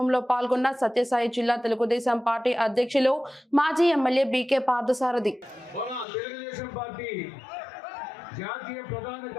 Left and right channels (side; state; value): right; drops out; at 6.1 s